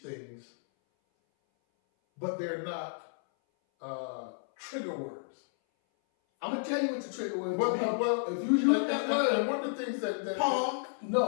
but they're not trigger words. I'm gonna tell you what the trigger word is. Well, if you use that word, and one of the things that Punk.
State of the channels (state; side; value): silent; right; 57 dB below the other